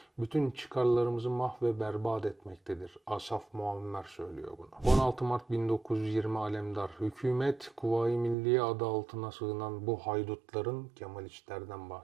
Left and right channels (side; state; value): left; drops out; at 8.3 s